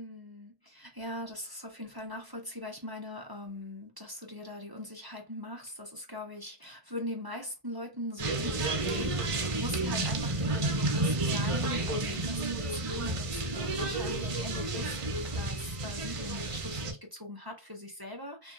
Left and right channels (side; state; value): left; late; 1.0 ms